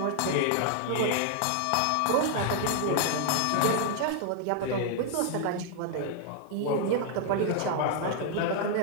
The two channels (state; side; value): different; both; correlation 0.00